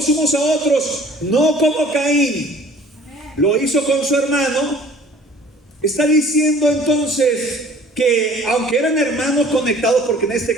unos a otros, no como Caín lo hizo con su hermano, está diciendo entonces que aunque eran hermanos conectados, porque en este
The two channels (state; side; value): normal; both; correlation 0.51